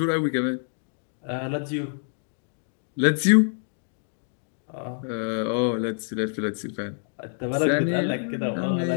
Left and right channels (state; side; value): silent; right; digital silence